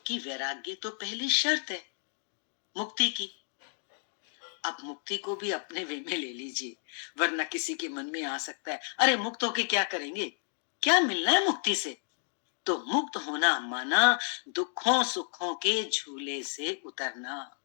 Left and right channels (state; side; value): silent; right; 57 dB below the other